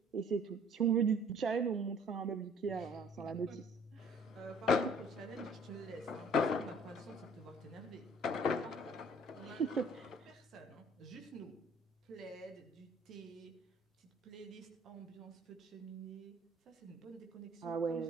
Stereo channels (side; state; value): both; normal; correlation 0.55